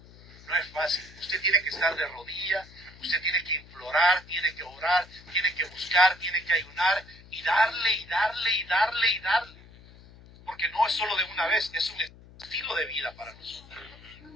No es fácil. Usted tiene que estar de rodillas, usted tiene que implorar, tiene que orar, tiene que buscar, tiene que ayunar y darle y darle y darle y darle. Porque no es solo de una vez, es un estilo de vida para nosotros.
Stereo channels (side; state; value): left; noise; hum, 21 dB below the sound